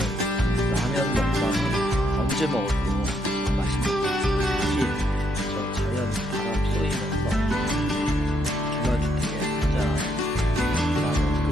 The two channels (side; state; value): both; normal; correlation 0.75